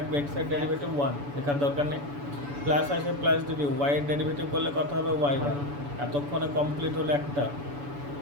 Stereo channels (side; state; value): left; late; 7.0 ms